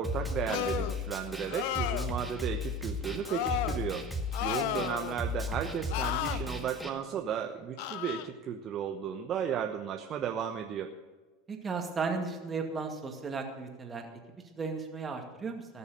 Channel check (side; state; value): both; normal; correlation 0.40